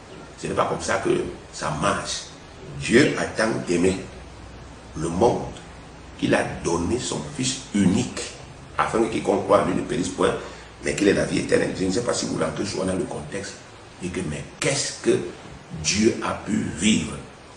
ce n'est pas comme ça que ça marche. Dieu a tant aimé le monde qu'il a donné son Fils unique, afin que quiconque croit en lui ne périsse point, mais qu'il ait la vie éternelle. Je ne sais pas si vous rentrez souvent dans le contexte, et que mais qu'est-ce que Dieu a pu vivre?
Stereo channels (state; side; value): identical; both; correlation 1.00